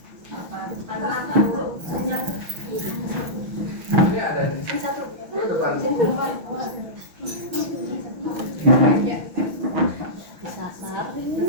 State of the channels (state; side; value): late; left; 6.2 ms